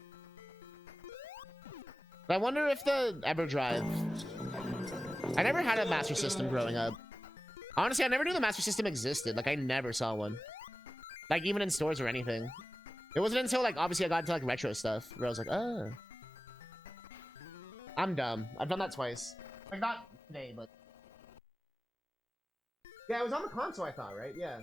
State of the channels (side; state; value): both; normal; correlation 0.96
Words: But I wonder if the EverDrive... I never had a Master System growing up. Honestly, I never knew the Master System existed. Like I never saw one. Like even in stores or anything. It wasn't until like obviously I got into like retro stuff where I was like, oh. I'm dumb. I've done that twice. Like not today, but... Yeah, it was on the console I thought, right? Yeah.